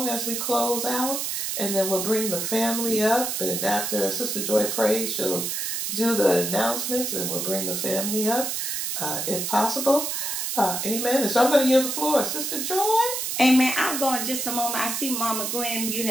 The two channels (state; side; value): noise; right; hiss, 2 dB below the sound